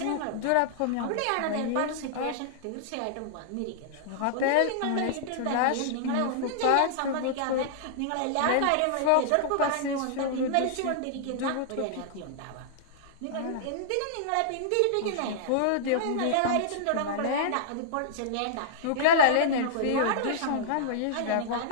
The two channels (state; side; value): different; both; correlation -0.02